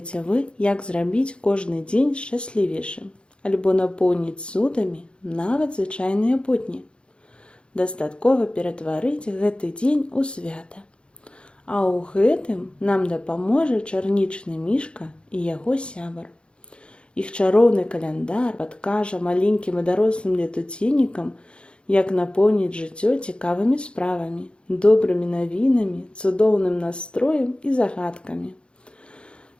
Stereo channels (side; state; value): right; late; 0.055 ms